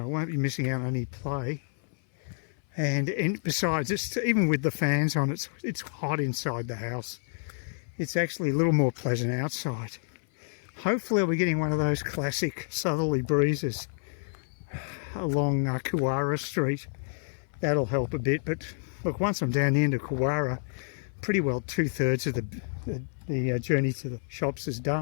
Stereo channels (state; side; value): silent; right; 58 dB below the other